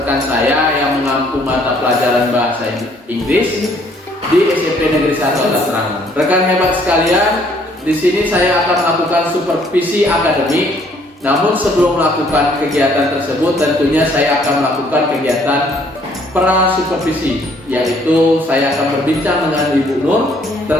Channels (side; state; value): both; normal; correlation 0.63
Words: saya yang mengampu mata pelajaran bahasa Inggris di SMP Negeri 1 Atap Serangun. Rekan hebat sekalian, di sini saya akan melakukan supervisi akademik. Namun sebelum melakukan kegiatan tersebut, tentunya saya akan melakukan kegiatan pra supervisi, yaitu saya akan berbincang dengan Ibu Nur